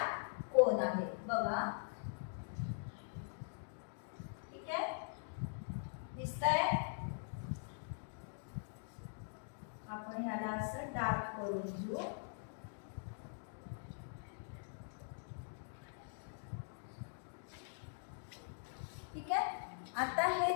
कोण आहेत बघा. ठीक आहे. दिसतंय? आपण ह्याला असं डार्क करून घेऊ. ठीक आहे. आता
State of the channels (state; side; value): silent; right; digital silence